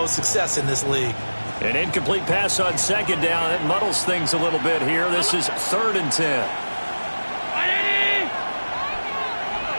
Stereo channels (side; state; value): both; inverted; correlation -1.00